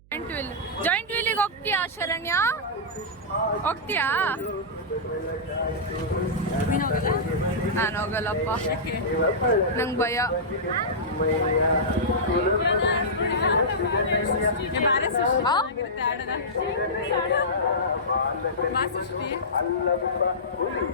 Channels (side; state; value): right; noise; hum, 27 dB below the sound